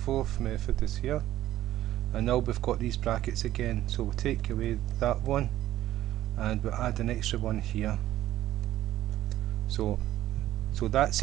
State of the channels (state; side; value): quieter; left; 13.8 dB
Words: is here, and now we've got these brackets again, so we'll take away that one and we'll add an extra one here. So that's